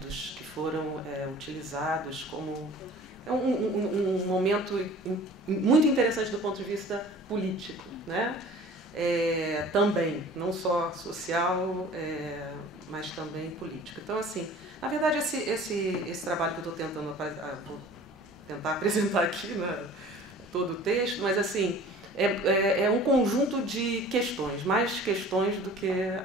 que foram utilizados como um momento muito interessante do ponto de vista político, né? Também, não só social, mas também político. Então, assim, na verdade, esse trabalho que eu estou tentando vou tentar apresentar aqui, né, todo o texto, mas assim, é um conjunto de questões, mais questões do que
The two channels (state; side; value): normal; both; correlation 0.45